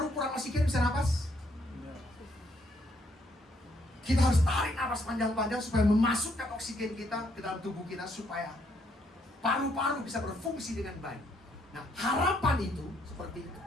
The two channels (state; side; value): normal; both; correlation 0.71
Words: kurang oksigen bisa napas? Kita harus tarik napas panjang-panjang supaya memasukkan oksigen kita ke dalam tubuh kita supaya paru-paru bisa berfungsi dengan baik. Nah, harapan itu seperti itu.